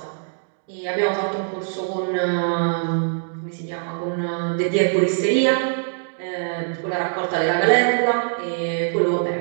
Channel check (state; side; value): silent; left; digital silence